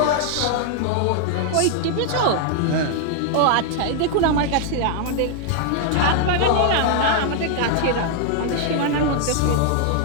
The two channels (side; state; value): both; different; correlation 0.00